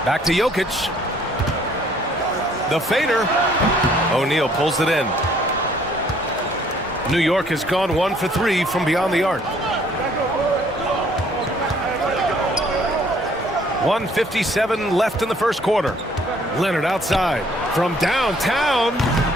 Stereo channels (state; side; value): normal; both; correlation 0.61